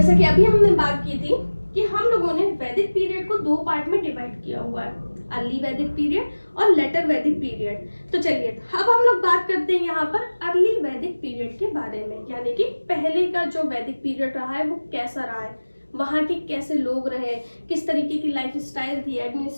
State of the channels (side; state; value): both; inverted; correlation -1.00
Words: कि अभी हमने बात की थी कि हम लोगों ने वैदिक पीरियड को 2 पार्ट में डिवाइड किया हुआ है, अर्ली वैदिक पीरियड और लेटर वैदिक पीरियड। तो चलिए अब हम लोग बात करते हैं यहाँ पर अर्ली वैदिक पीरियड के बारे में, यानी कि पहले का जो वैदिक पीरियड रहा है वो कैसा रहा है, वहाँ के कैसे लोग रहे, किस तरीके की लाइफ स्टाइल थी,